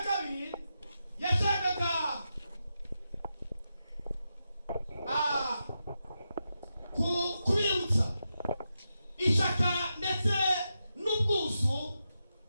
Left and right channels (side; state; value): both; inverted; correlation -0.88